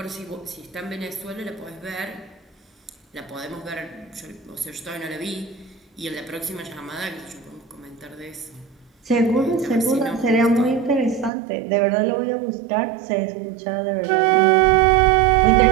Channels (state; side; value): drops out; left; at 11.3 s